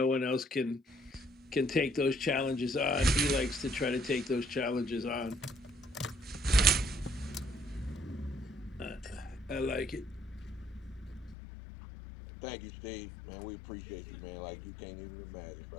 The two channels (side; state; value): right; drops out; at 11.4 s